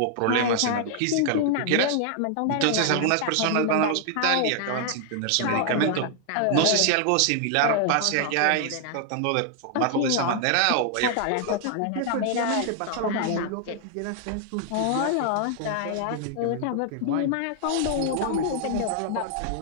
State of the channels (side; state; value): both; different; correlation 0.00